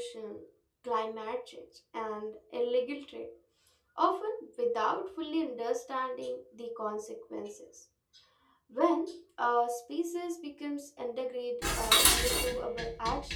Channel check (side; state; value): both; identical; correlation 1.00